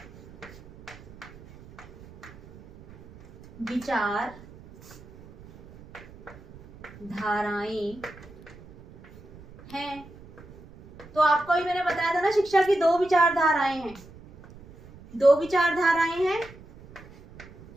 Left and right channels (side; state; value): right; noise; rumble, 21 dB below the sound